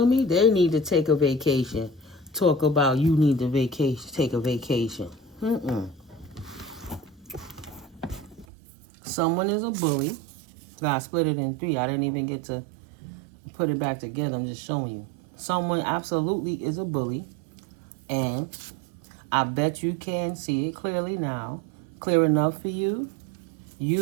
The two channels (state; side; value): drops out; left; at 8.5 s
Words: me? They need to take a vacation. Talk about you need to vacation. Take a vacation. Someone is a bully. God split it in three. I didn't even get to put it back together. I'm just showing you. Someone absolutely is a bully. And I bet you can see it clearly now. Clear enough for you.